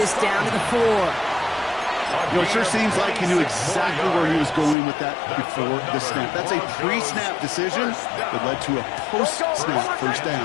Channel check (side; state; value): right; drops out; at 4.8 s